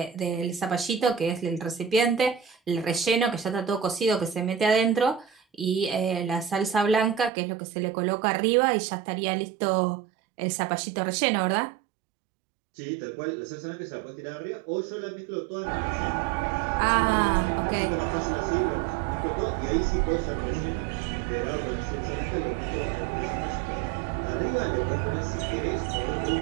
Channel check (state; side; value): drops out; left; at 7.3 s